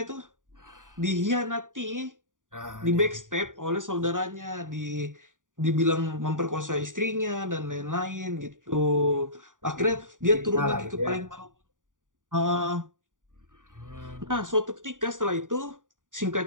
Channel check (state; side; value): late; left; 0.88 ms